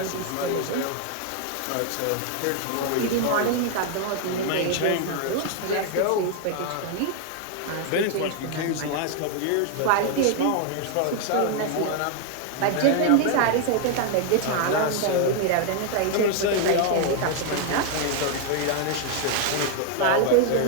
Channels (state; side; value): different; both; correlation 0.00